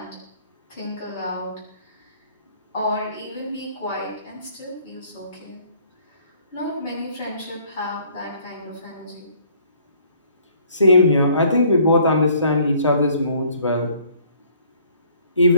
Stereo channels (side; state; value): both; inverted; correlation -0.60